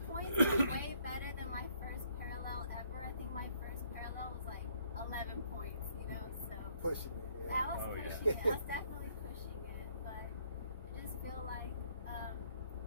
points is way better than my first parallel ever. I think my first parallel was like 11 points, you know, so. Pushing it, yeah. I was pushing it. I was definitely pushing it, but I just feel like,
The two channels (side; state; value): both; inverted; correlation -0.66